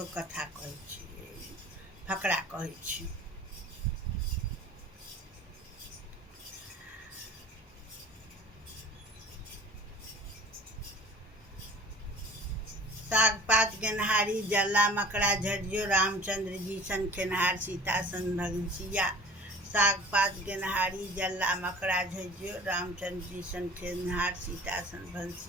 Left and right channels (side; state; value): both; normal; correlation 0.44